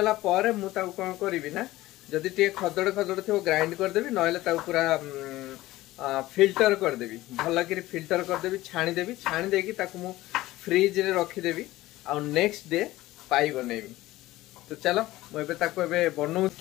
पर मु ताकु कोन करबी ना जदि टे खदड़ खदड़ थो ग्राइंड कर देबी नहले ताकु पूरा फिल्टर कर देबी भल कि फिल्टर कर देबी छाणी देकी ताकु मु फ्रिज रे रखी देबी आ नेक्स्ट डे पाई बनेबी। तो चलो मुझे ताकु एबे बनौ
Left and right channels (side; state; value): right; quieter; 17.1 dB